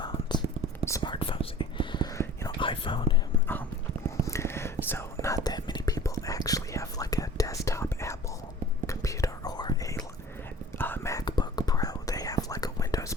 smartphones, iPhone. So not that many people actually have like a desktop Apple computer or a MacBook Pro. They have like a Windows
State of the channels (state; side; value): normal; both; correlation 0.44